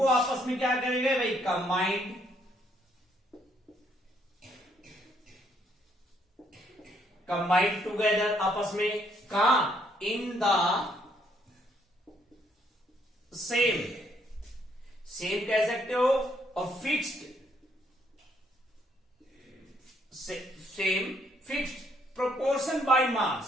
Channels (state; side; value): normal; both; correlation 0.70